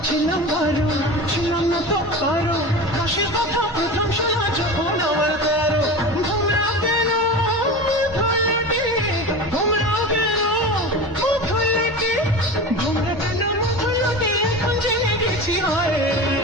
ছিলাম বারো, ছিলাম না তো কারো, রসের কথা প্রথম শোনা যখন আমার তেরো। ঘুমরা কেন ধরলে, ঘুমরা কেন ধরলে, ঘুমরা কেন ধরলে, এখন জেনে গেছি হয়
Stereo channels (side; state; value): both; normal; correlation 0.30